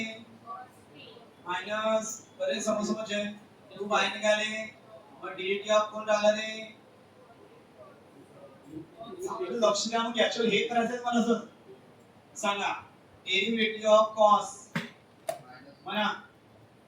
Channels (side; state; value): both; identical; correlation 1.00